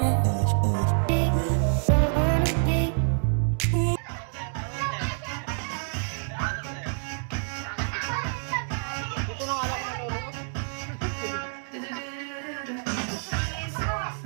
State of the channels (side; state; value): left; silent; 60 dB below the other